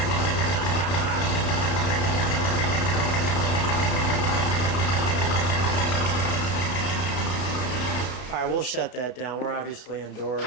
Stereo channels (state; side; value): late; right; 32 ms